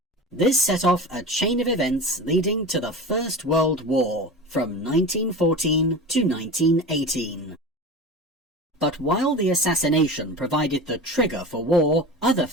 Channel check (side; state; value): both; normal; correlation 0.31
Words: This set off a chain of events leading to the First World War, from 1914 to 1918. But while the assassination provided the trigger for war, other